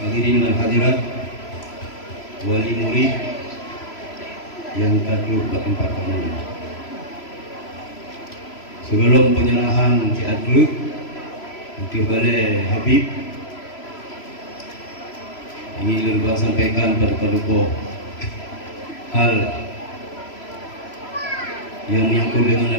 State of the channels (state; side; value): late; right; 3.0 ms